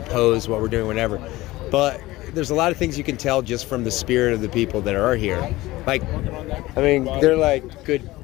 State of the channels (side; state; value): right; quieter; 18.5 dB